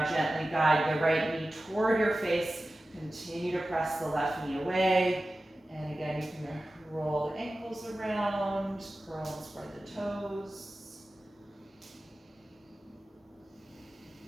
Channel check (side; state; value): both; normal; correlation 0.95